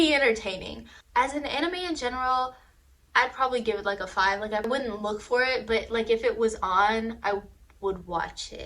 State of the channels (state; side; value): identical; both; correlation 1.00